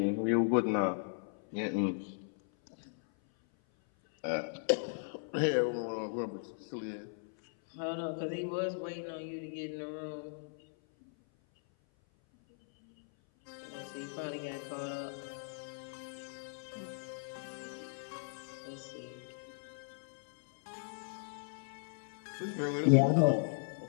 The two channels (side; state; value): right; silent; 53 dB below the other